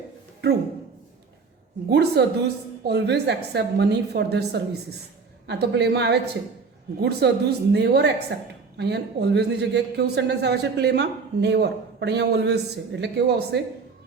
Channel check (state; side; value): quieter; left; 4.8 dB